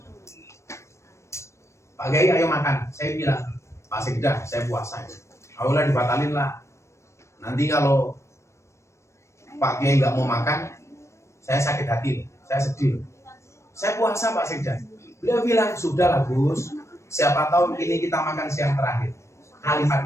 Pak Kiai ayo makan. Saya bilang, Pak Sekda, saya puasa. Ayolah dibatalin lah. Nanti kalau Pak Kiai nggak mau makan, saya sakit hati, saya sedih. Saya puasa Pak Sekda. Beliau bilang, sudah lah Gus, siapa tahu ini kita makan siang terakhir.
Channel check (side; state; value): right; late; 0.14 ms